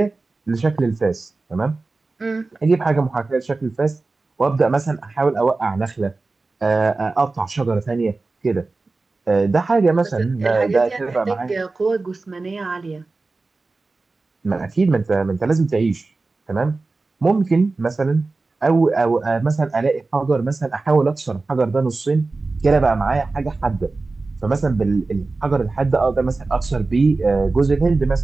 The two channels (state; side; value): quieter; left; 3.6 dB